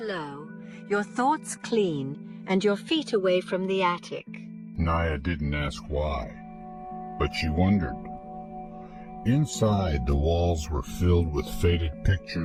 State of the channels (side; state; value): both; identical; correlation 1.00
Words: low, your thoughts clean, and your feet away from the attic." Naya didn't ask why, but she wondered. Inside, the walls were filled with faded